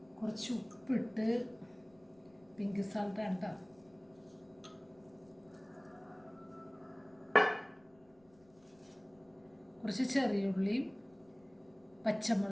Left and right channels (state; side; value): noise; left; rumble, 30 dB below the sound